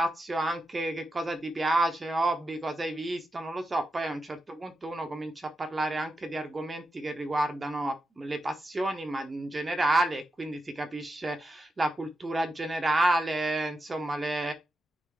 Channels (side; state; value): both; normal; correlation 0.88